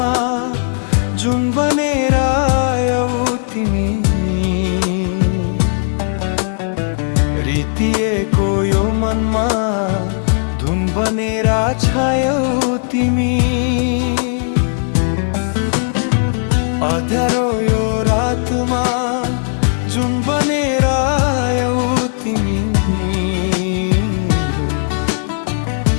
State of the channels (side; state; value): right; silent; 66 dB below the other